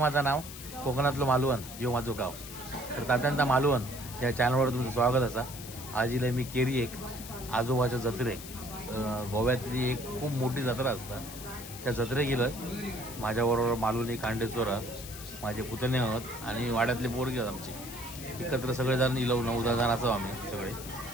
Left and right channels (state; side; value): noise; left; hiss, 12 dB below the sound